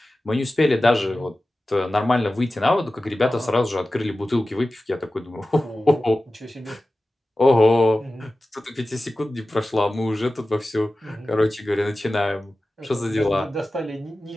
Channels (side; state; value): both; normal; correlation 0.95